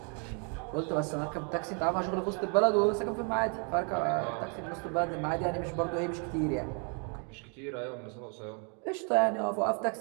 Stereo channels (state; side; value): quieter; left; 38.5 dB